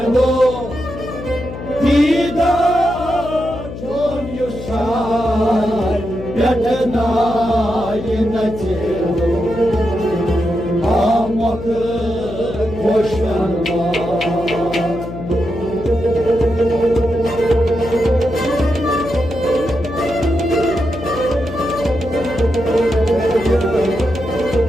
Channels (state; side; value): noise; left; hum, 10 dB below the sound